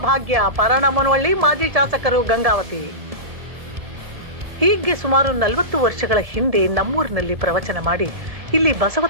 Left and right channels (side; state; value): left; late; 1.7 ms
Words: ಭಾಗ್ಯ. ಪರನಮನವಳ್ಳಿ ಮಾಜಿ ಶಾಸಕರು ಗಂಗಾವತಿ. ಹೀಗೆ ಸುಮಾರು 40 ವರ್ಷಗಳ ಹಿಂದೆ ನಮ್ಮೂರಿನಲ್ಲಿ ಪ್ರವಚನ ಮಾಡಿ ಇಲ್ಲಿ ಬಸವ